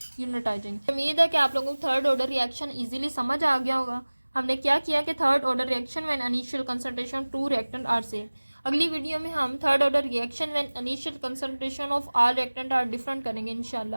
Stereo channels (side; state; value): both; inverted; correlation -1.00